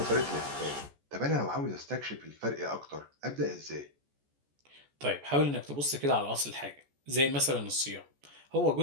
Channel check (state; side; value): late; left; 14 ms